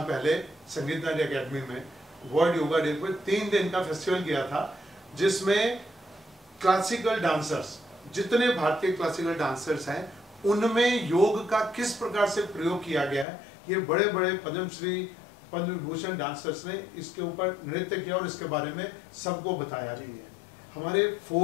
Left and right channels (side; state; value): right; drops out; at 13.2 s